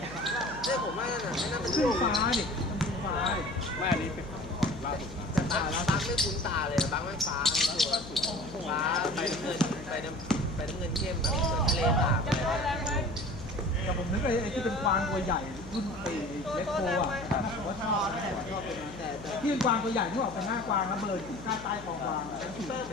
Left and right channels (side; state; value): left; noise; hum, 15 dB below the sound